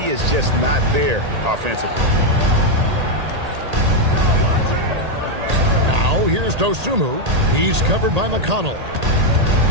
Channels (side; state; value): left; late; 1.8 ms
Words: is just not there offensively. Now here's Dosunmu. He's covered by McConnell.